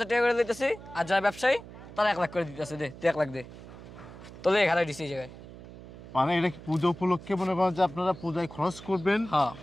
টাকা করে লইতেছি আর যারা ব্যবসায়ী তারা 1 লাখ করে দিতেছে দে 1 লাখ দে তোলে ঘরে দিছি এই জায়গায় মানে এটা কি পূজা উপলক্ষে মনে করেন যে আপনারা পূজায় খরচ করবেন হ্যাঁ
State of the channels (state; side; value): noise; right; hum, 16 dB below the sound